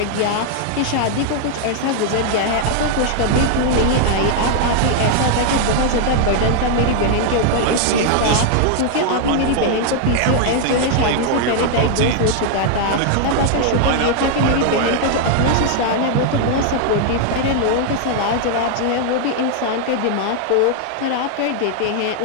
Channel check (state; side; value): different; both; correlation 0.00